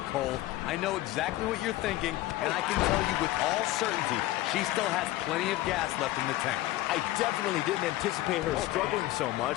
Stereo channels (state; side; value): quieter; right; 16.4 dB